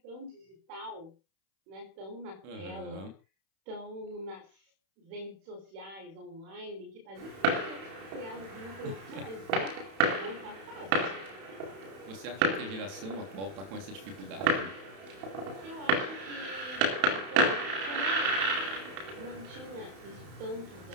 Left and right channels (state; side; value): late; left; 31 ms